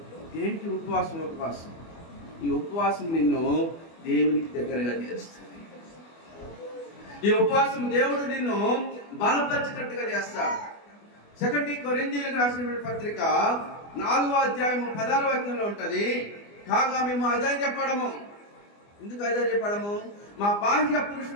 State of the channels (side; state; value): right; late; 24 ms